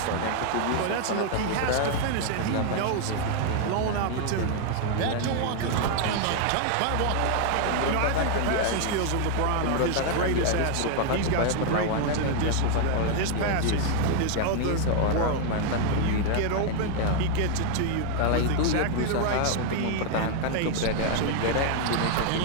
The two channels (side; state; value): both; different; correlation 0.00